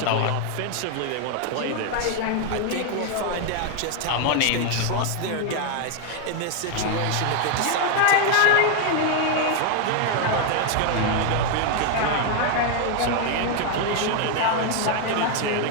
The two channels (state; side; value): different; both; correlation 0.01